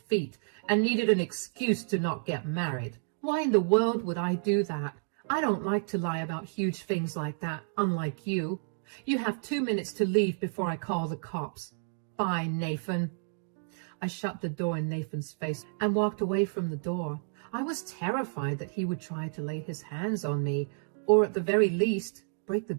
and needed an excuse to not get married. Why in the world would I do that? I don't like to lie about huge things like that, unlike you. You have 2 minutes to leave before I call the cops. Bye, Nathan. I shut the door in Nathan's face and walked away from the door. I was terrified that he would try to lay his hands on me, or at the very least, break the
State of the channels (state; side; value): silent; left; digital silence